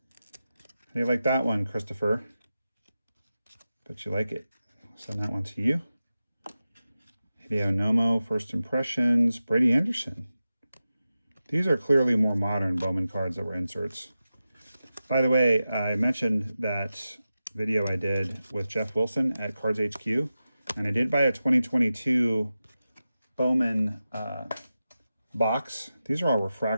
How do you like that one, Christopher? Bet you like it. I'll send that one to you. Hideo Nomo, First Impressions. Brady Anderson. These are clearly more modern Bowman cards that were inserts. By the way, I mentioned that video I did with Jeff Wilson at Cards HQ, and I did buy a 2022 Bowman box. These are all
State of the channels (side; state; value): both; inverted; correlation -0.93